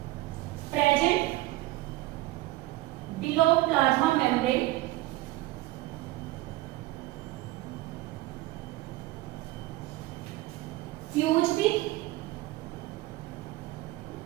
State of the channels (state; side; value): quieter; left; 17.9 dB